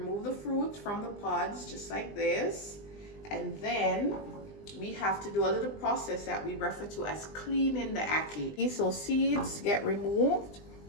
the fruit from the pods just like this, and then we have to do a little process that we refer to as cleaning the ackee. So seeds get removed,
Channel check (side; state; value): right; late; 20 ms